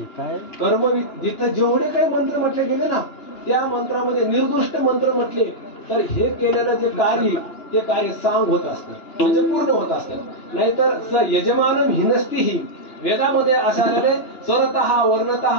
कर्मविधी जिथं जेवढे काही मंत्र म्हटले गेले ना, त्या मंत्रामध्ये निर्दुष्ट मंत्र म्हटले तर हे केलेलं जे कार्य ते कार्य सांग होत असतं, म्हणजे पूर्ण होत असतं. नाहीतर स यजमानम हिनस्तीही वेदामध्ये असं आलेले स्वरतः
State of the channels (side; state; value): right; late; 2.9 ms